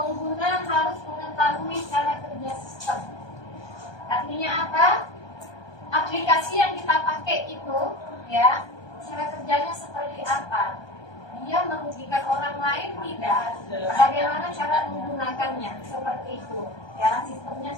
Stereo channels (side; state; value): right; late; 1.2 ms